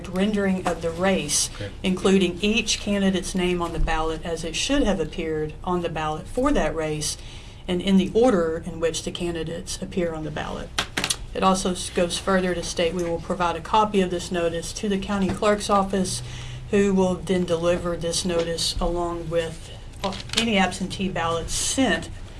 rendering of the race, including each candidate's name on the ballot as it should have appeared on the ballot for that race and in the order in which the candidates appear on the ballot. It also goes further to state we will provide a copy of this notice to the county clerk's office, who will then deliver this notice along with any absentee ballots sent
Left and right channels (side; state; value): both; identical; correlation 1.00